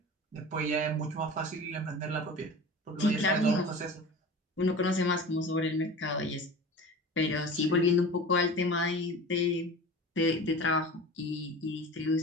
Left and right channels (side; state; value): both; normal; correlation 0.36